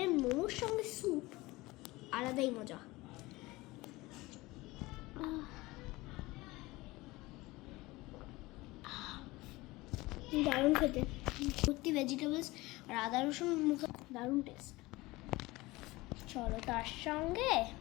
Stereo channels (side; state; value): right; quieter; 20.8 dB